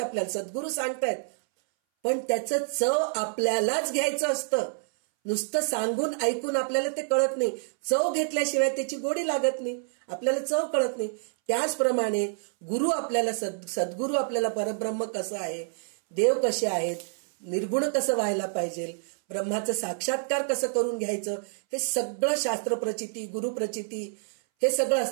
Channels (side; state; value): left; silent; 60 dB below the other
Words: सद्गुरू सांगतायत. पण त्याचं चव आपल्यालाच घ्यायचं असतं. नुसतं सांगून ऐकून आपल्याला ते कळत नाही. चव घेतल्याशिवाय त्याची गोडी लागत नाही, आपल्याला चव कळत नाही. त्याचप्रमाणे गुरु आपल्याला सद्गुरू आपल्याला परब्रह्म कसं आहे, देव कसे आहेत, निर्गुण कसं व्हायला पाहिजे, ब्रह्माचं साक्षात्कार कसं करून घ्यायचं, हे सगळं शास्त्र प्रचिती, गुरु प्रचिती हे सगळं